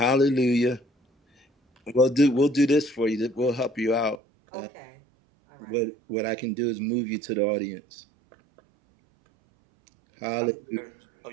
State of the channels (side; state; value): left; drops out; at 4.2 s